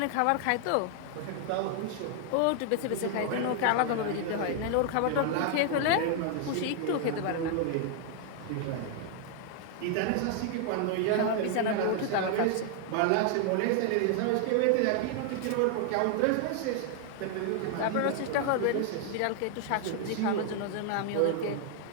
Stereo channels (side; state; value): both; different; correlation 0.00